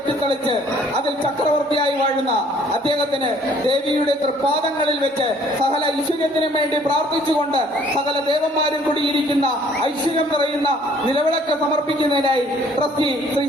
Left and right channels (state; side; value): normal; both; correlation 0.59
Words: അതിൽ ചക്രവർത്തിയായി വാഴുന്ന അദ്ദേഹത്തിന് ദേവിയുടെ തൃപ്പാദങ്ങളിൽ വെച്ച് സകല ഐശ്വര്യത്തിനും വേണ്ടി പ്രാർത്ഥിച്ചുകൊണ്ട് സകല ദേവന്മാരും കൂടിയിരിക്കുന്ന ഐശ്വര്യം നിറയുന്ന നിലവിളക്ക് സമർപ്പിക്കുന്നതിനായി ട്രസ്റ്റി ശ്രീ